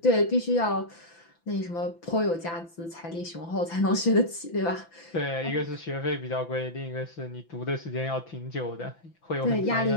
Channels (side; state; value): right; late; 5.9 ms